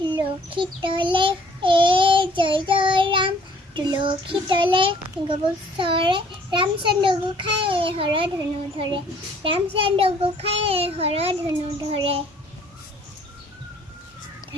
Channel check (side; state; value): both; normal; correlation 0.59